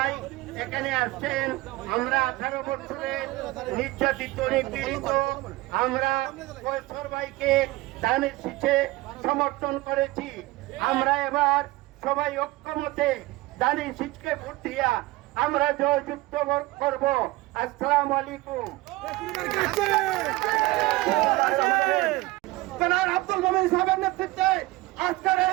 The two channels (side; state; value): left; quieter; 20.0 dB